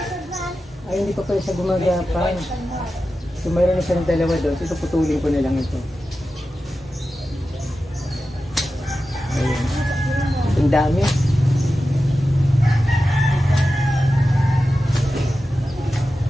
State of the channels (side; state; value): both; normal; correlation 0.93